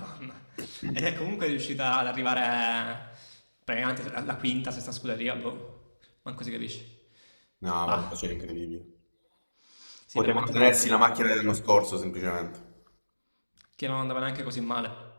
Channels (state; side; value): inverted; both; correlation -1.00